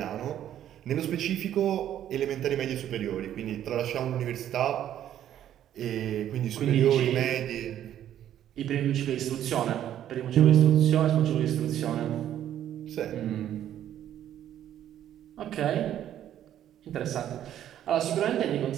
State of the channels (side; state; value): left; quieter; 11.1 dB